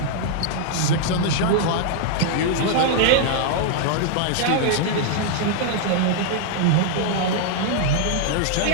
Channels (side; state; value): both; different; correlation 0.00